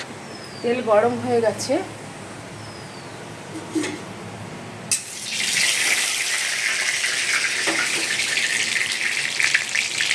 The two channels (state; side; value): identical; both; correlation 1.00